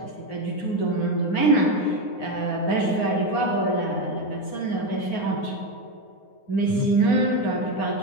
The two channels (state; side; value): late; right; 9.5 ms